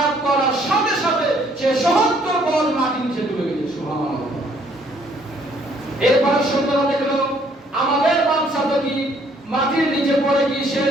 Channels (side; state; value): both; normal; correlation 0.64